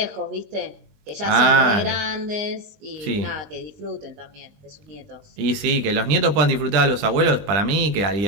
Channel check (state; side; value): late; left; 20 ms